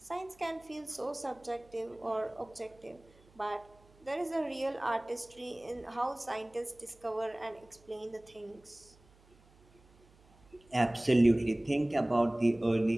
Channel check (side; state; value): right; noise; hum, 28 dB below the sound